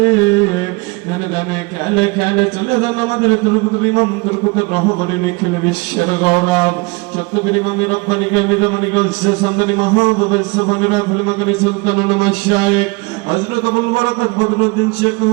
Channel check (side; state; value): left; quieter; 26.0 dB